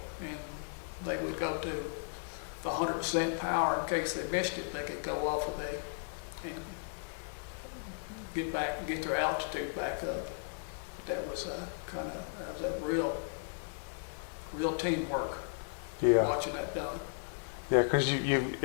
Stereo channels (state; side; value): silent; right; digital silence